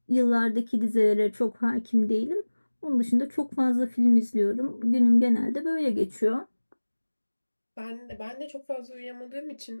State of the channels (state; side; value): inverted; both; correlation -1.00